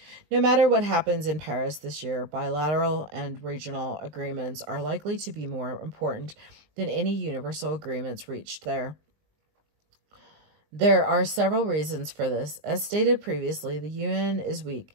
No matter what happens in Paris this year, bilateral and regional agreements are likely to be more important than any universal agreements reached there. There are several reasons for this. As stated previously, the UN is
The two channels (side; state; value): left; late; 20 ms